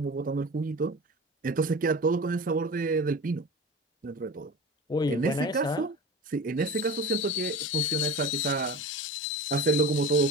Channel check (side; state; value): both; normal; correlation 0.33